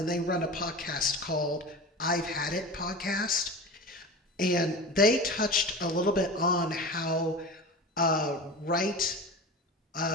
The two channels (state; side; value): normal; both; correlation 0.31